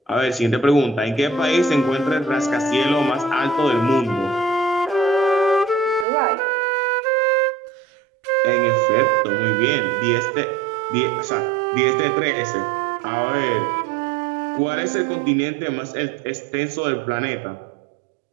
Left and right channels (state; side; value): drops out; left; at 6.1 s